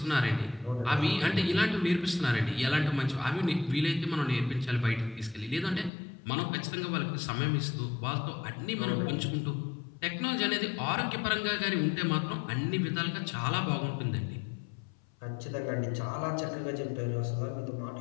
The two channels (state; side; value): drops out; right; at 5.9 s